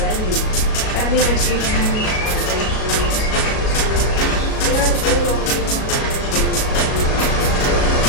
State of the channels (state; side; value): late; right; 37 ms